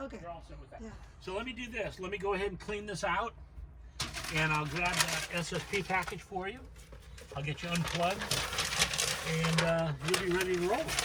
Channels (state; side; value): identical; both; correlation 1.00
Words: You're all set with that. Yeah. So let me do this. Let me go ahead and clean this out, and I'll grab that SSP package for you. I'll get you unplugged, and you'll be ready to roll.